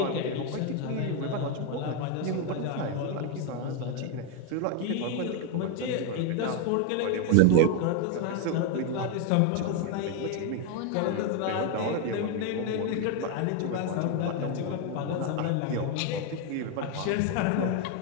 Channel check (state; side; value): different; both; correlation 0.01